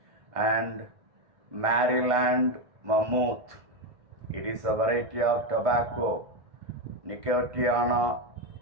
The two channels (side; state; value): left; late; 1.5 ms